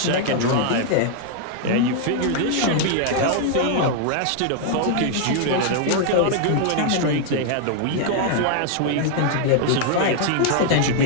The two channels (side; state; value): both; different; correlation 0.00